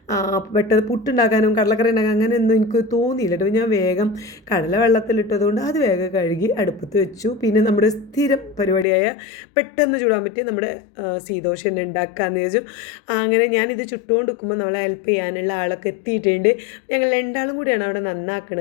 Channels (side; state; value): right; drops out; at 8.8 s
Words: പെട്ടെന്ന് പുട്ടുണ്ടാക്കാനും കടലക്കറി ഉണ്ടാക്കാനും അങ്ങനെയൊന്നും എനിക്ക് തോന്നിയില്ല കേട്ടോ. ഞാൻ വേഗം കടല വെള്ളത്തിലിട്ടതുകൊണ്ട് അത് വേഗം കഴുകി അടുപ്പത്ത് വെച്ചു. പിന്നെ നമ്മുടെ സ്ഥിരം പരിപാടിയായ പെട്ടെന്ന് ചൂടാൻ പറ്റിയ നമ്മുടെ സീദോശ തന്നെ ഉണ്ടാക്കാമെന്ന് വിചാരിച്ചു. അങ്ങനെ ഞാനിത് ചുട്ടുകൊണ്ട് നിൽക്കുമ്പോൾ നമ്മളെ ഹെൽപ്പ് ചെയ്യാനുള്ള ആളൊക്കെ എത്തിയിട്ടുണ്ട്. ഞങ്ങൾ രണ്ടാളും കൂടിയാണ് അവിടെ